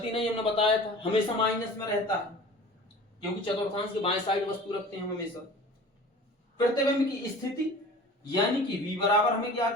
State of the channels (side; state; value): both; normal; correlation 0.41